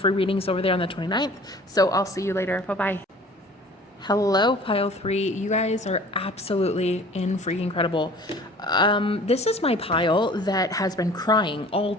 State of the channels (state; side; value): normal; both; correlation 0.47